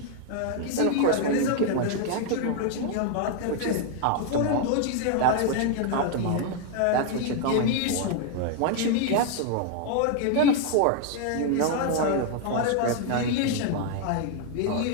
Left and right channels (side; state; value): both; different; correlation 0.00